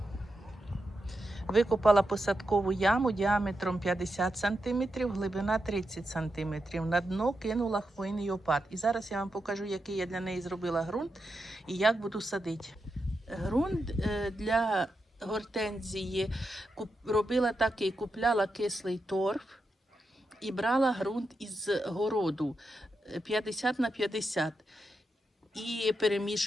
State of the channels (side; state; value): both; normal; correlation 0.87